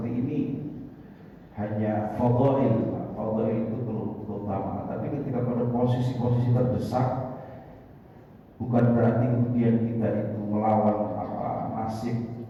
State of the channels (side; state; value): both; identical; correlation 1.00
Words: ini hanya fadhail itu terutama. Tapi ketika pada posisi-posisi terdesak, bukan berarti kemudian kita itu melawan nasib